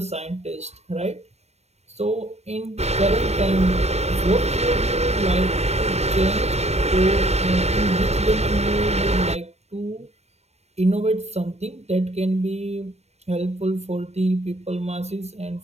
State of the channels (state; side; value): late; left; 0.31 ms